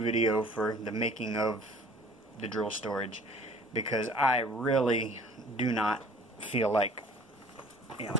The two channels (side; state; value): both; normal; correlation 0.50